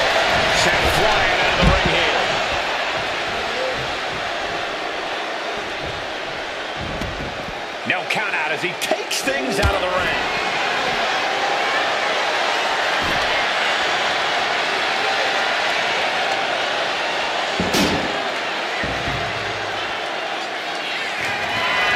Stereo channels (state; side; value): identical; both; correlation 1.00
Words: Sent flying out of the ring here. No count out as he takes things out of the ring.